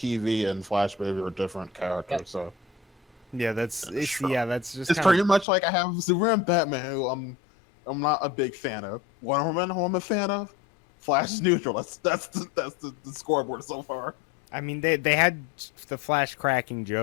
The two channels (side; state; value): right; drops out; at 5.5 s